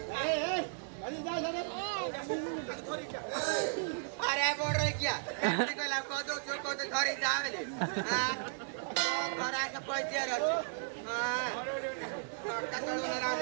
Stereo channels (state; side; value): silent; left; digital silence